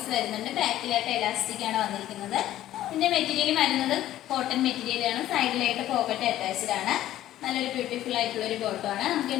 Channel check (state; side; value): quieter; right; 13.4 dB